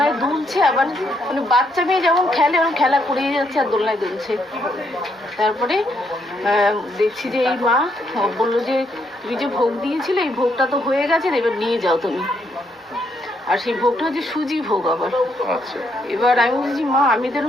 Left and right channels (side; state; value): both; normal; correlation 0.74